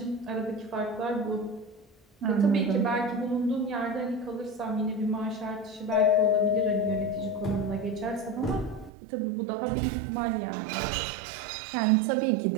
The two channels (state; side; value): drops out; left; at 8.9 s